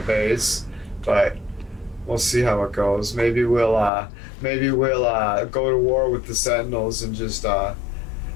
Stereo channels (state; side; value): drops out; right; at 3.9 s